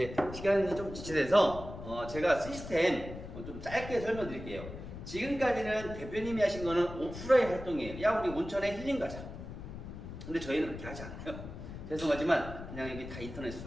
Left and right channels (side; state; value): left; noise; rumble, 11 dB below the sound